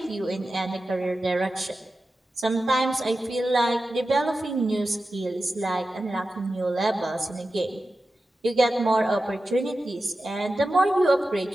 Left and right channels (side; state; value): both; normal; correlation 0.93